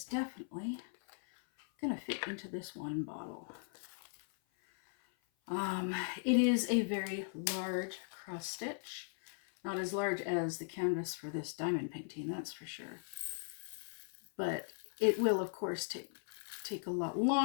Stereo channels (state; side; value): silent; right; 52 dB below the other